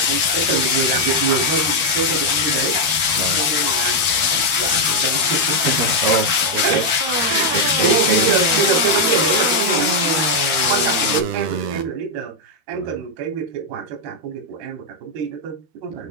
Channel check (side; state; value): left; late; 12 ms